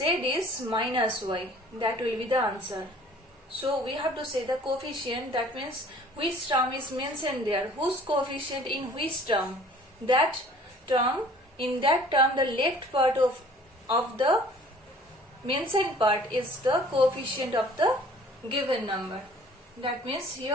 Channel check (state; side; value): normal; both; correlation 0.52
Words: is minus y. That will be the answer. So, we have to say the coefficient, that means which term is mentioned there, whose coefficient in which term. That term, in that term, the left part of the mentioned part is the coefficient of the given number. That means